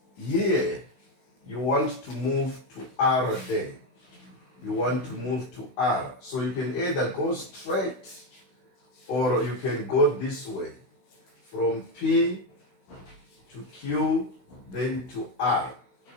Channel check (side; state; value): right; late; 16 ms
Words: here, you want to move to R there. You want to move to R. So you can either go straight or you can go this way from P to Q then to R.